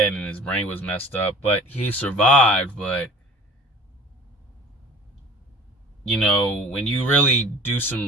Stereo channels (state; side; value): normal; both; correlation 0.45